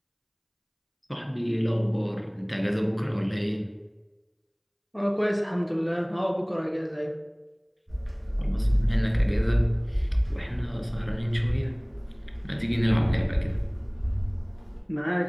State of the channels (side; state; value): both; identical; correlation 1.00